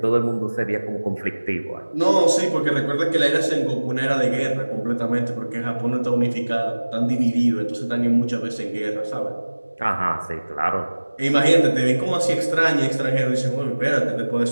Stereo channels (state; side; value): inverted; both; correlation -1.00